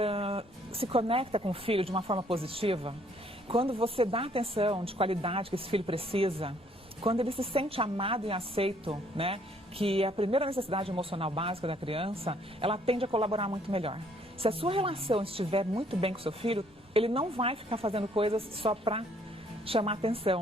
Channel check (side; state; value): both; normal; correlation 0.64